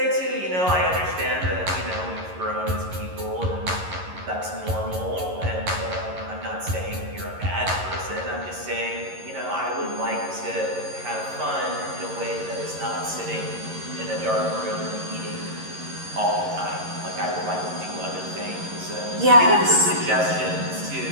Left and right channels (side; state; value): left; late; 11 ms